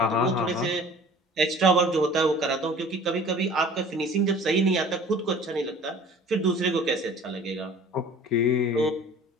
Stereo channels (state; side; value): normal; both; correlation 0.46